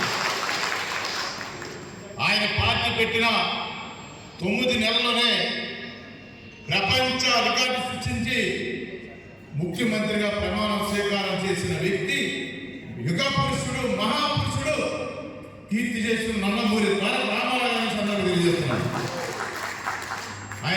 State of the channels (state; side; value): identical; both; correlation 1.00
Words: ఆయన పార్టీ పెట్టిన 9 నెలల్లోనే ప్రపంచ రికార్డు సృష్టించి ముఖ్యమంత్రిగా ప్రమాణ స్వీకారం చేసిన వ్యక్తి, యుగ పురుషుడు, మహాపురుషుడు, కీర్తి చేసిన నందమూరి తారక రామారావు గురించి అందరూ తెలియజేస్తున్నారు.